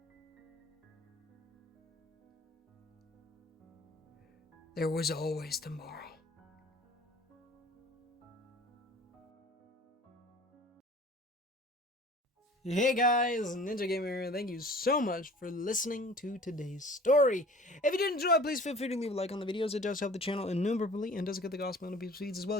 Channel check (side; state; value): both; normal; correlation 0.47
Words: There was always tomorrow. Hey guys, Ninja Gamer, thank you so much for listening to today's story. If you did enjoy, please feel free to leave a like on the videos. It does help the channel innumerably and does get the gospel on people's feeds, as well